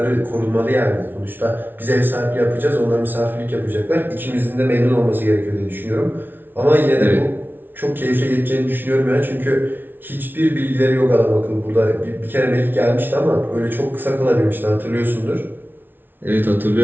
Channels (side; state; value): left; late; 0.096 ms